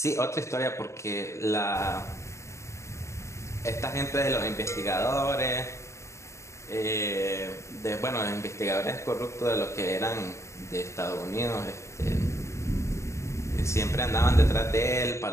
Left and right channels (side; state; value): right; late; 0.14 ms